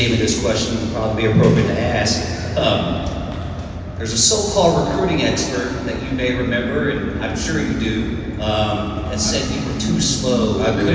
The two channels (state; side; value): identical; both; correlation 1.00